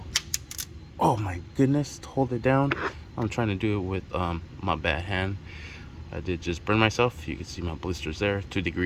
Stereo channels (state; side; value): identical; both; correlation 1.00